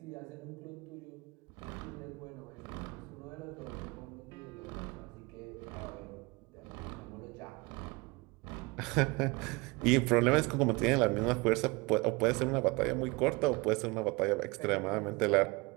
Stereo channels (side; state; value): left; quieter; 25.6 dB